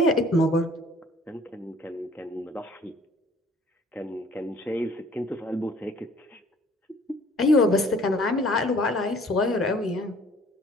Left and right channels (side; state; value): both; normal; correlation 0.55